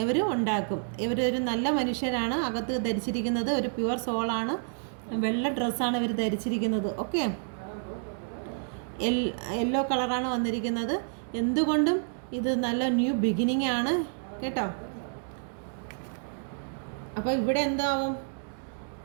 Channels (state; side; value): silent; left; digital silence